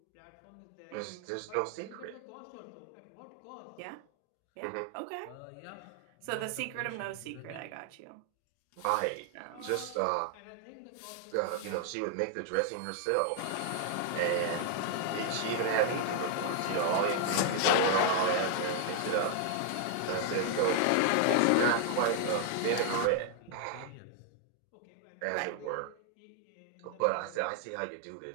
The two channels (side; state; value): both; different; correlation 0.00